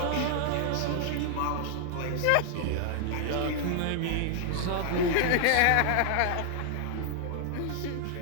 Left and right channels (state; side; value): different; both; correlation 0.00